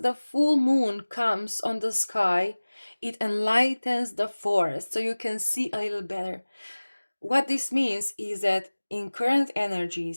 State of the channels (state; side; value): inverted; both; correlation -1.00